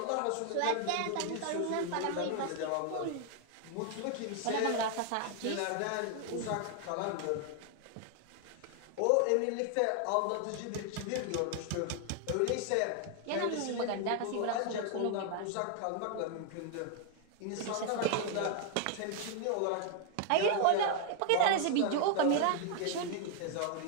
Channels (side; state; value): both; different; correlation 0.00